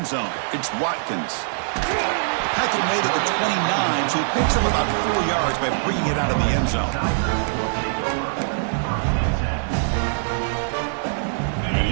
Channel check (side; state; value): left; silent; digital silence